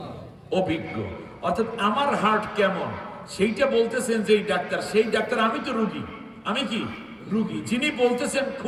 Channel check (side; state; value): both; identical; correlation 1.00